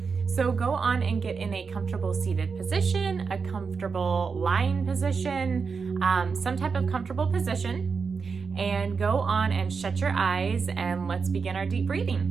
So go on and get in a comfortable seated position, a comfortable lying position, some type of comfortable position, and go on and shut your eyes and let's begin our deep breathing.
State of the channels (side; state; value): left; quieter; 5.3 dB